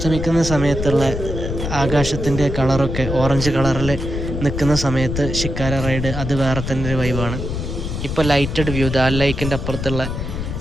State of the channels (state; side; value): noise; left; rumble, 4 dB below the sound